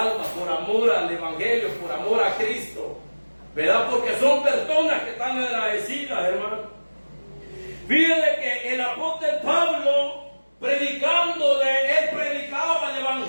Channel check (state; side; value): inverted; both; correlation -1.00